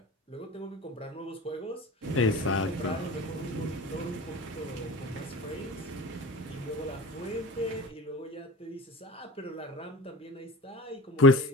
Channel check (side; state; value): both; normal; correlation 0.34